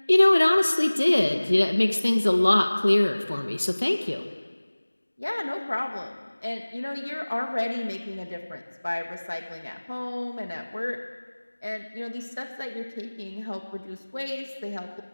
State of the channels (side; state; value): both; inverted; correlation -1.00